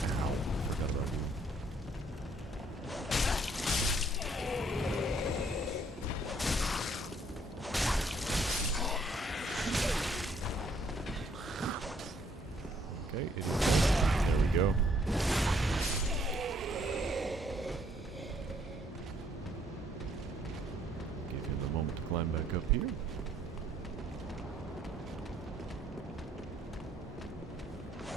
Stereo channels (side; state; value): both; normal; correlation 0.66